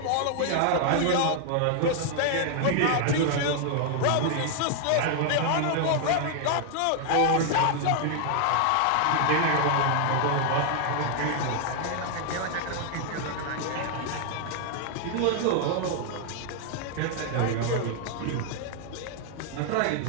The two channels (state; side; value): different; both; correlation 0.00